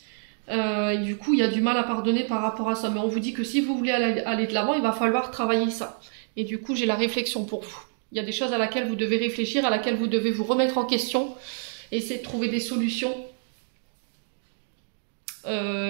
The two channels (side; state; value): left; silent; 60 dB below the other